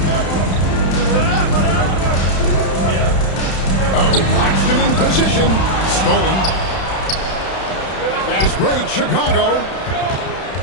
Oh, Claxton in position. Stolen. Fast break, Chicago.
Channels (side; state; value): right; late; 31 ms